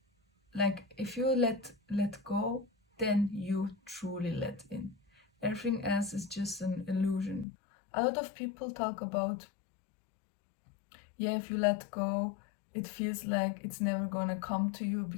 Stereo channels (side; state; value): right; drops out; at 7.5 s